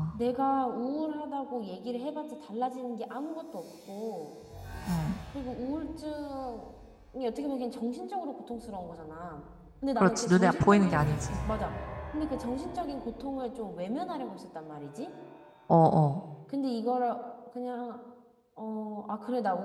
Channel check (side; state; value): both; identical; correlation 1.00